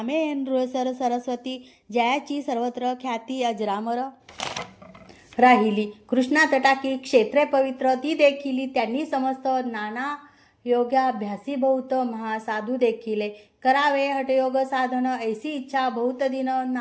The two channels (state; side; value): identical; both; correlation 1.00